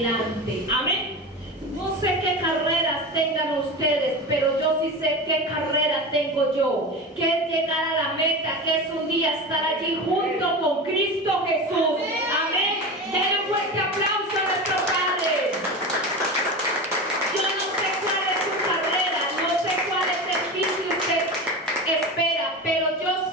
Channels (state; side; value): normal; both; correlation 0.26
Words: Amén. No sé qué carreras tengan ustedes, pero yo sí sé qué carrera tengo yo, que es llegar a la meta, que es un día estar allí junto con Cristo Jesús. Amén. Denle un fuerte aplauso a nuestro Padre. Yo no sé cuál es su carrera, no sé cuál es el fin que usted espera, pero yo